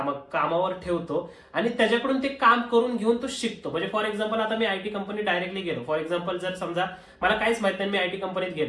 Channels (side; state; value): both; identical; correlation 1.00